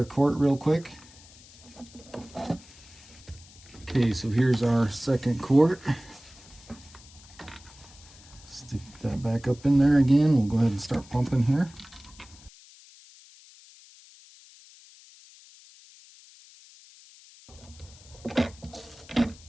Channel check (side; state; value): left; noise; hiss, 22 dB below the sound